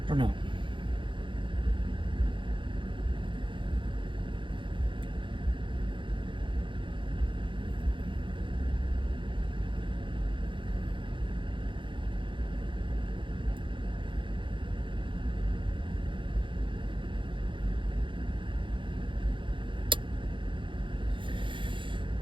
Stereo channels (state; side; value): late; left; 0.24 ms